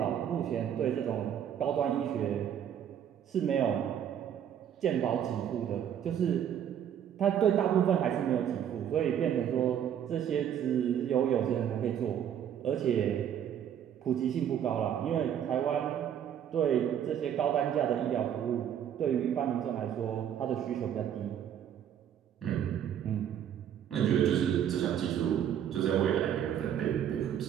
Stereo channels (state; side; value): quieter; left; 9.5 dB